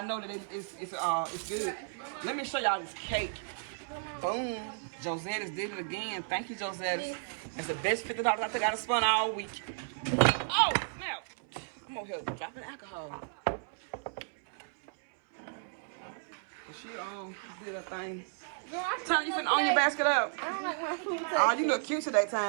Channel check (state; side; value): silent; left; 55 dB below the other